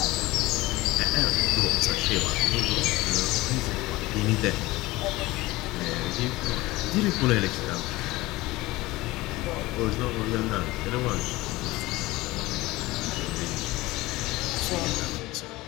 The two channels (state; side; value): quieter; right; 19.7 dB